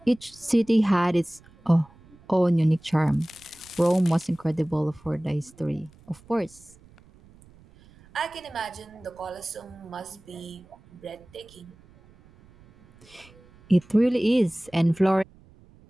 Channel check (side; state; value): right; noise; rumble, 26 dB below the sound